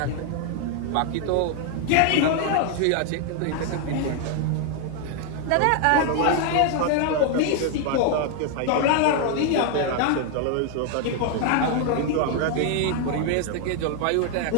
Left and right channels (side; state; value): both; different; correlation 0.00